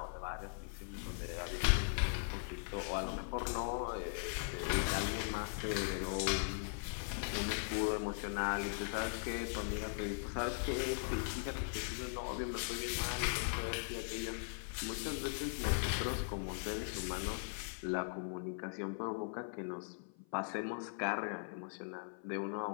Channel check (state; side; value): silent; right; 51 dB below the other